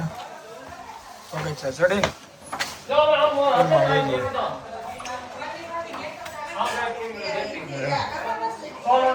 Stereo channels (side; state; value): both; identical; correlation 1.00